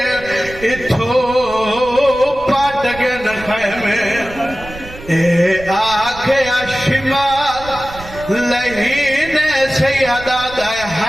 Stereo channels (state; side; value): noise; right; rumble, 16 dB below the sound